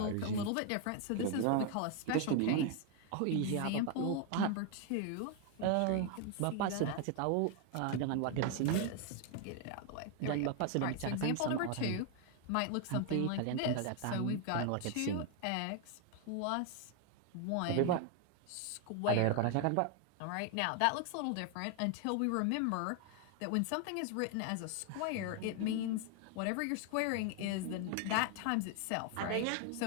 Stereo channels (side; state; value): both; different; correlation 0.01